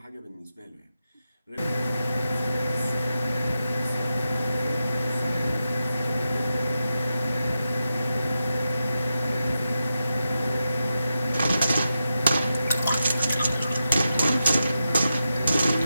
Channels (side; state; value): both; inverted; correlation -0.89